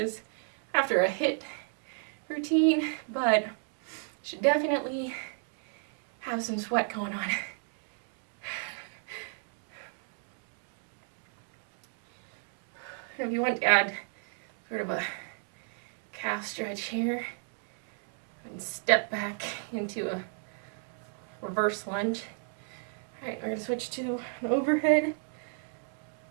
after a HIIT routine, but you should definitely have some sweat going on. And if you want to add sort of a calf stretch here, and step back into a reverse lunge. All right, we're gonna switch to an overhead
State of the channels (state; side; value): silent; left; 56 dB below the other